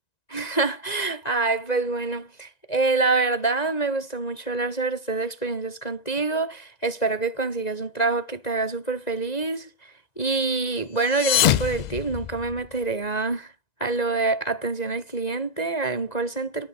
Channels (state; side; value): late; right; 1.9 ms